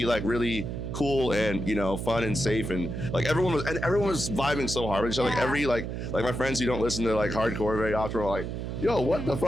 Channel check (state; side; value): noise; right; hum, 5 dB below the sound